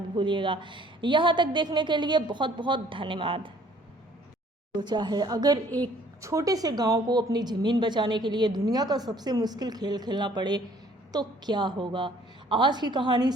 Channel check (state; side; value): normal; both; correlation 0.58